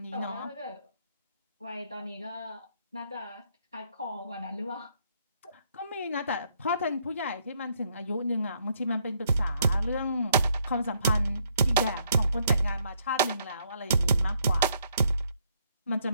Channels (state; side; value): inverted; both; correlation -0.70